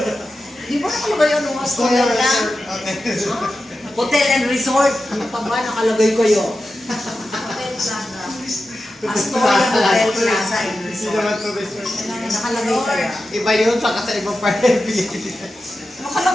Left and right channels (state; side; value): normal; both; correlation 0.92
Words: Di ba nakalagay yun ng Astoria lang? Hotel and Resort. Ano pa ba? Nakalagay ko yun. Hotel Plaza. Astoria Hotel Plaza and Resort. Nakalagay kaya. Iba yun, saka sa ibang part ng Pilipinas.